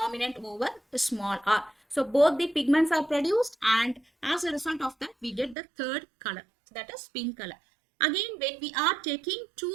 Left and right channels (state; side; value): drops out; left; at 5.6 s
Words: over the small r. So both the pigments are produced, and as a result of that, we get the third color, that is pink color. Again, when we are taking